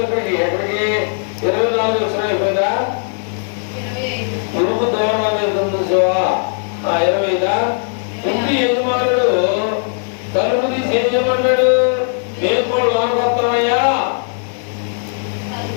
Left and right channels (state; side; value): silent; right; 68 dB below the other